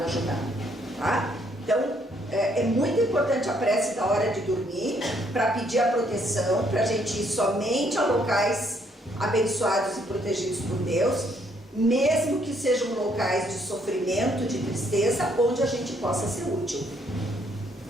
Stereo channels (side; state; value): both; normal; correlation 0.69